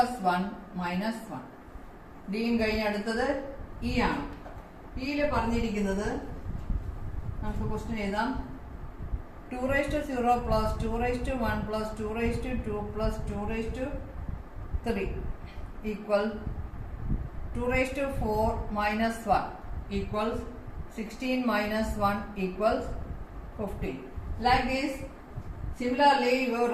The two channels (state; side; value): identical; both; correlation 1.00